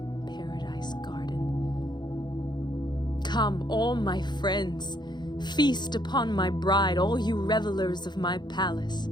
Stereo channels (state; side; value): late; right; 0.21 ms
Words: paradise garden. Come, all my friends, feast upon my bride, all you revelers of my palace.